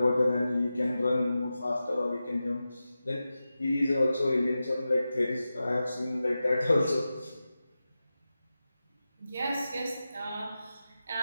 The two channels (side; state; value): both; inverted; correlation -0.93